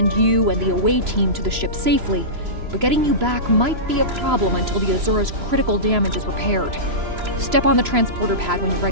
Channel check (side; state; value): left; late; 3.0 ms